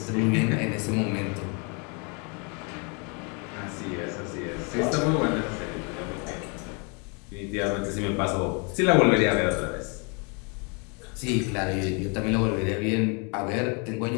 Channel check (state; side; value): quieter; right; 34.4 dB